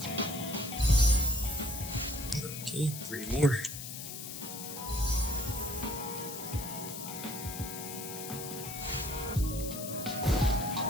Okay, 3 more.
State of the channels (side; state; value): left; noise; hiss, 8 dB below the sound